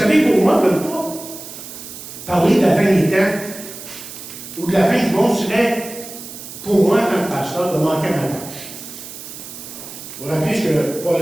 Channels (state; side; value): noise; right; hiss, 13 dB below the sound